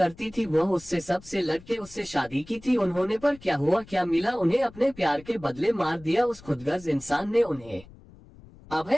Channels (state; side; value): noise; left; rumble, 22 dB below the sound